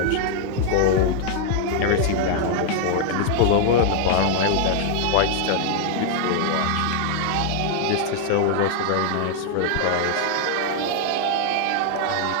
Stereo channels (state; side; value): different; both; correlation 0.00